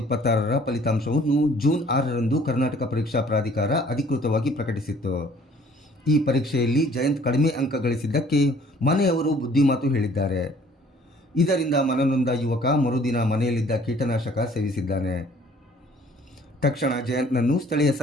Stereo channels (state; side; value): normal; both; correlation 0.56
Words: ಫಲಿತಾಂಶವನ್ನು ಜೂನ್ 6ರಂದು ಕರ್ನಾಟಕ ಪರೀಕ್ಷಾ ಪ್ರಾಧಿಕಾರ ಅಧಿಕೃತವಾಗಿ ಪ್ರಕಟಿಸಿತ್ತು. ಈ ಪರೀಕ್ಷೆಯಲ್ಲಿ ಜಯಂತ್ ಕಡಿಮೆ ಅಂಕ ಗಳಿಸಿದ್ದಕ್ಕೆ ಮನೆಯವರು ಬುದ್ಧಿಮಾತು ಹೇಳಿದ್ದಾರೆ. ಇದರಿಂದ ಮನನೊಂದ ಯುವಕ ಮರುದಿನ ಮನೆಯಲ್ಲಿದ್ದ ಕೀಟನಾಶಕ ಸೇವಿಸಿದ್ದಾನೆ. ತಕ್ಷಣ ಜಯಂತ್ನನ್ನು ಸ್ಥಳೀಯ